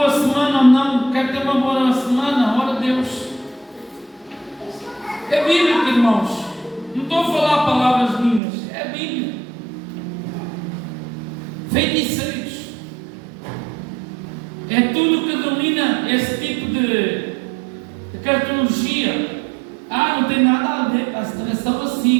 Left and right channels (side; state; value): left; drops out; at 8.4 s